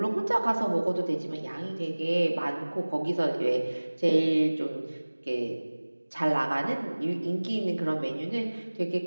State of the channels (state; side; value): inverted; both; correlation -1.00